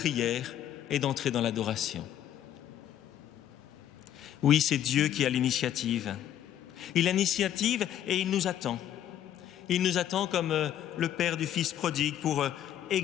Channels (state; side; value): quieter; right; 11.0 dB